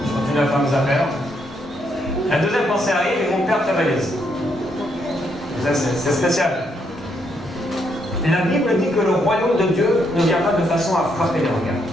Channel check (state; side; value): normal; both; correlation 0.76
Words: je continue à faire mes affaires. La deuxième pensée arrive, ils vont perdre ta valise. C'est spécial. La Bible dit que le royaume de Dieu ne vient pas de façon à frapper les regards.